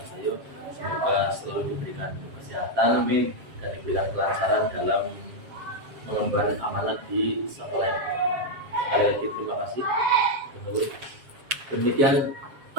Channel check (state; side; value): late; left; 7.4 ms